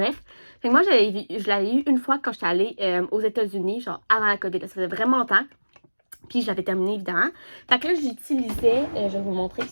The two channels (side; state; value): both; inverted; correlation -1.00